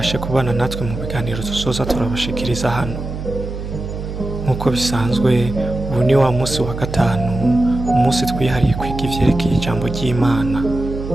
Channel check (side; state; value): right; noise; hum, 7 dB below the sound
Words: kubana natwe mu biganiro tuzoza turabashikiriza hano. Nk'uko bisanzwe ubu ni wa munsi wa gatanu, umunsi twihariye kwiga ivyerekeye ijambo ry'Imana.